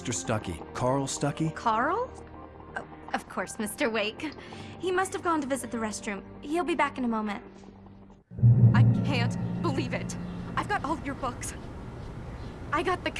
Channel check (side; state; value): both; identical; correlation 1.00